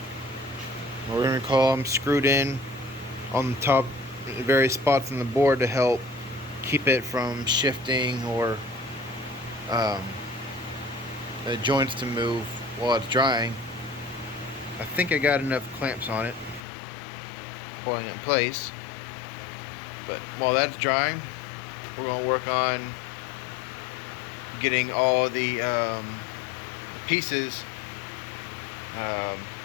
we're going to call them, screwed in on the top various spots on the board to help keep it from shifting or the joints to move while it's drying. I think I got enough clamps on it holding it in place, but while that's drying, we're going to work on getting all the pieces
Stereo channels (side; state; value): right; drops out; at 16.6 s